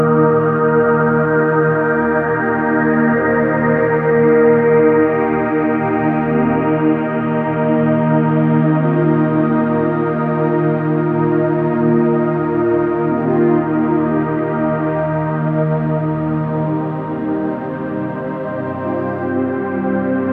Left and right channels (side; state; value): both; identical; correlation 1.00